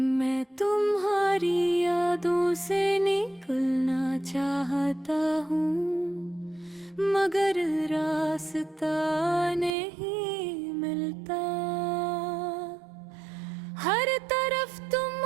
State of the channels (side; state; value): left; drops out; at 9.7 s